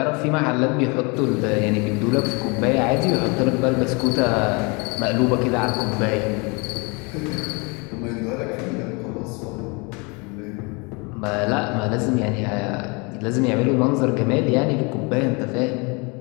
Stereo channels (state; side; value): quieter; right; 29.9 dB